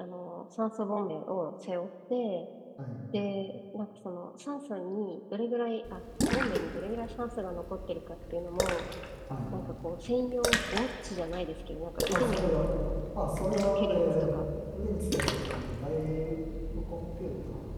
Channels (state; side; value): identical; both; correlation 1.00